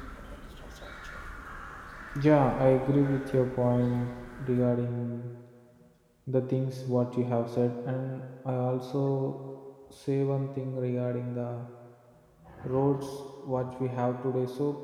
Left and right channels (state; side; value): identical; both; correlation 1.00